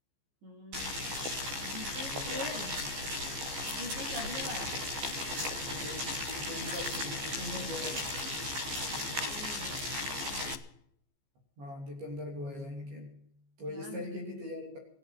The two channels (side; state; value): left; late; 15 ms